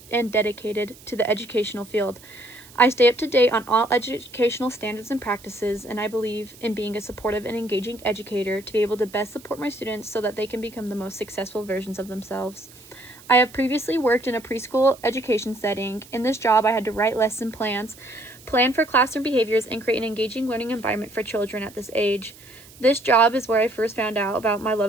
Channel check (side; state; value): right; noise; hiss, 22 dB below the sound